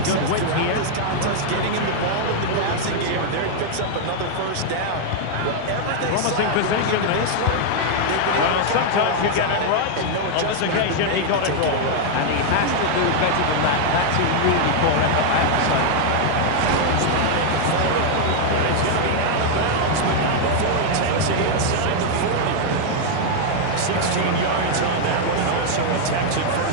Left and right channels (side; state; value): both; different; correlation 0.00